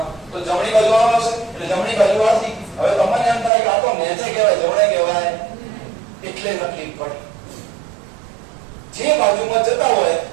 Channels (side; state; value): left; drops out; at 3.5 s